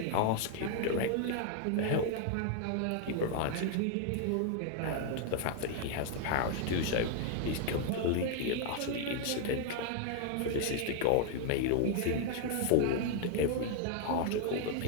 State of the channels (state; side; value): different; both; correlation 0.00